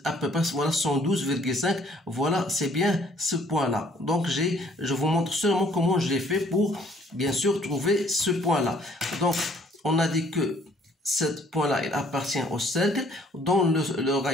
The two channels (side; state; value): both; normal; correlation 0.61